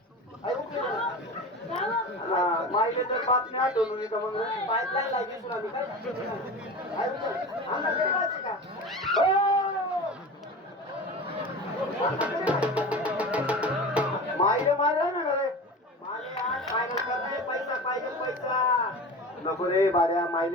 आई उकली माईले तर बातमी आठवून येतं मग पाईपलाईन लागली सुना मी काय आई उकत आमना गरीबाची का माईले मारा ना रे माले आज फायनल करणे पैसा पाहिजे पैसा नको रे बाऱ्या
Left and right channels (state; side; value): normal; both; correlation 0.32